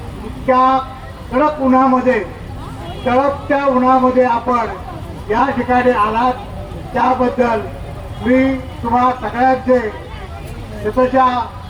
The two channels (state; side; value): identical; both; correlation 1.00